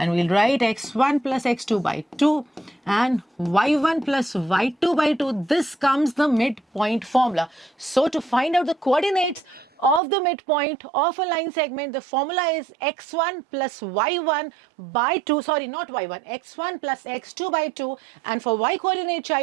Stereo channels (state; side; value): drops out; left; at 10.0 s